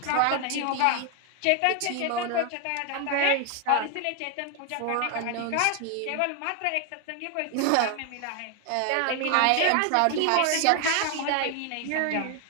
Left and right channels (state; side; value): different; both; correlation 0.01